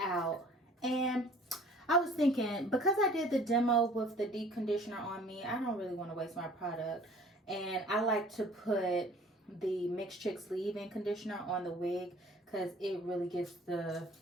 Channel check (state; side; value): normal; both; correlation 0.51